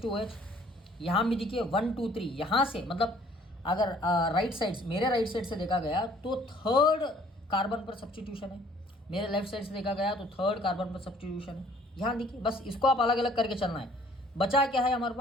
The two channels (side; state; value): both; normal; correlation 0.58